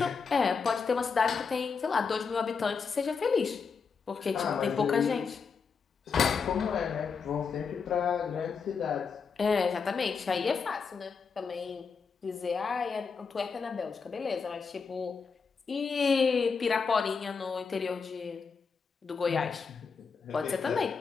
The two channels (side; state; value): right; quieter; 5.5 dB